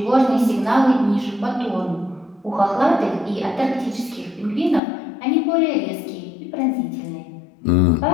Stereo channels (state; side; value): drops out; right; at 4.8 s